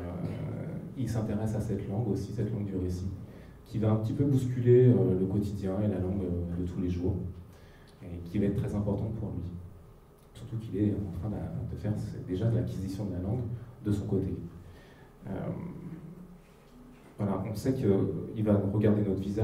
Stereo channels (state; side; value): identical; both; correlation 1.00